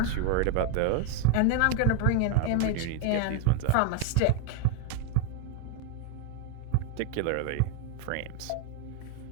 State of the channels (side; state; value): both; different; correlation 0.00